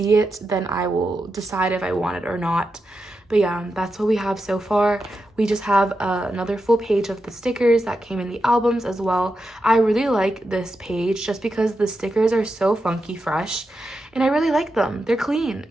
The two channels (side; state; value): both; normal; correlation 0.88